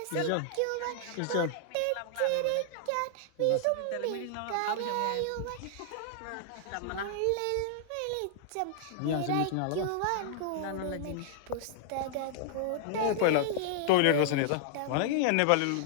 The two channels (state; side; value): different; both; correlation -0.01